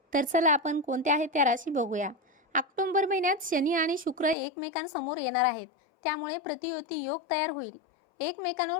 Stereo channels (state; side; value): drops out; right; at 4.4 s